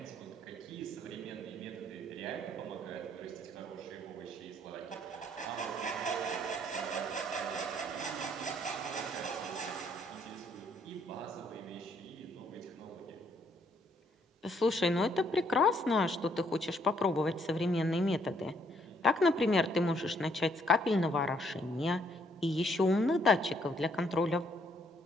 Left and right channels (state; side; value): normal; both; correlation 0.68